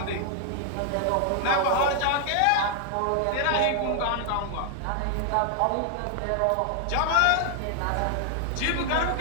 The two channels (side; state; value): both; different; correlation 0.00